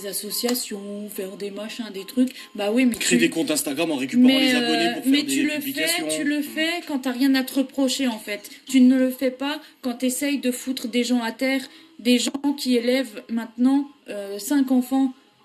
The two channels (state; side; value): identical; both; correlation 1.00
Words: associations, faire des machins, des trucs. Bah oui, mais créer des comptes Instagram en récupérant les abonnés pour faire des publications. Tu le fais quand t'as rien à te reprocher en fait. Tu ne le fais pas quand t'essayes de foutre des gens à terre, des gens qui élèvent maintenant 5 enfants.